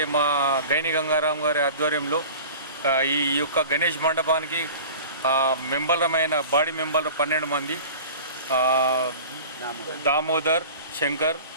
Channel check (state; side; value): inverted; both; correlation -0.39